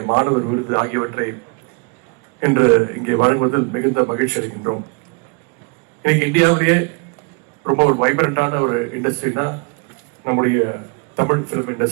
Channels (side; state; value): left; quieter; 33.0 dB